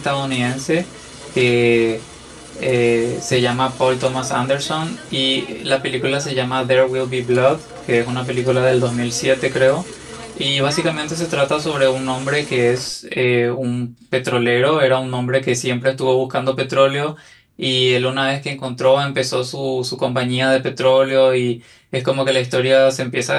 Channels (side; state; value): both; identical; correlation 1.00